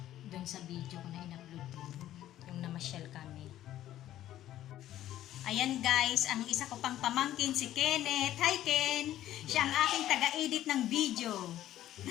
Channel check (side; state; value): right; quieter; 13.0 dB